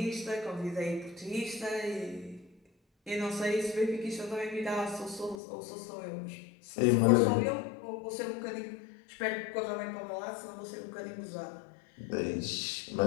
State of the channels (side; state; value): right; drops out; at 5.4 s